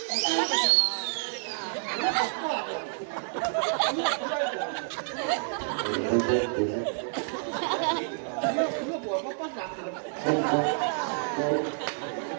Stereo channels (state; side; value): silent; left; digital silence